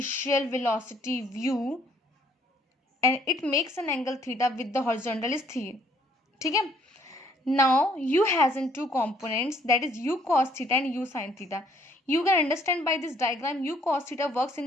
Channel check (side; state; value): both; normal; correlation 0.64